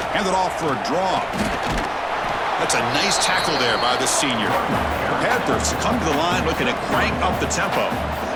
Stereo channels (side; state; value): both; identical; correlation 1.00